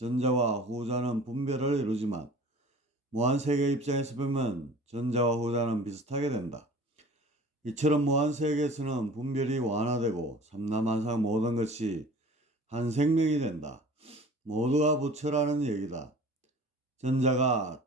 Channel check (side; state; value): both; normal; correlation 0.44